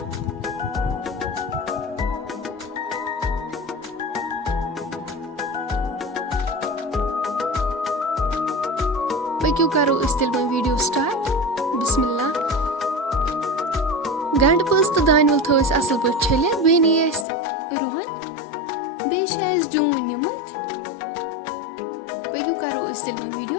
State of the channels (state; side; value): drops out; right; at 17.2 s